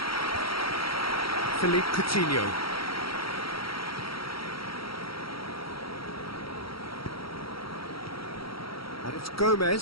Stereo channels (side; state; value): right; late; 0.75 ms